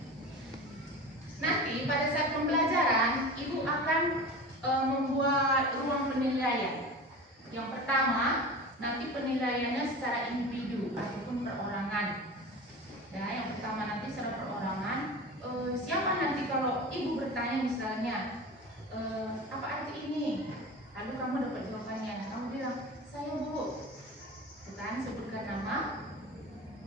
Nanti pada saat pembelajaran, Ibu akan membuat ruang penilaian. Yang pertama, nanti penilaiannya secara individu ataupun perorangan. Ya, yang pertama nanti secara perorangan. Siapa nanti kalau Ibu bertanya misalnya, apa arti ini? Lalu kamu dapat jawabannya. Nah, kamu bilang, saya Bu. Bukan sebutkan nama,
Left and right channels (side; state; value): both; normal; correlation 0.32